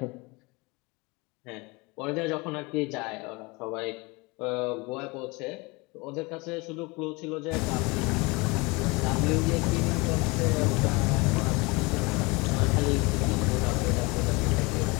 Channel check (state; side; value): quieter; right; 26.0 dB